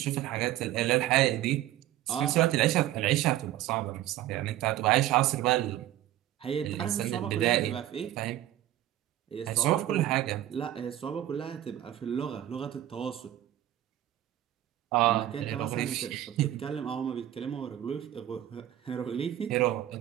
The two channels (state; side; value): quieter; left; 13.3 dB